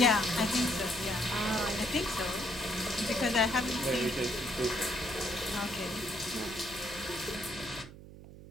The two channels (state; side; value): noise; right; hum, 16 dB below the sound